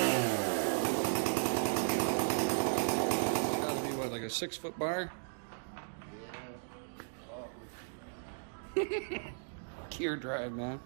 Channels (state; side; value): silent; left; digital silence